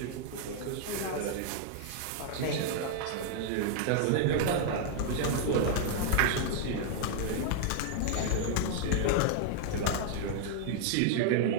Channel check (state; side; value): different; both; correlation 0.00